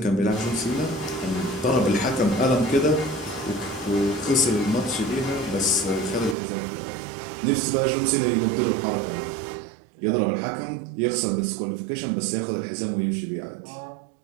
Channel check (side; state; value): left; drops out; at 6.4 s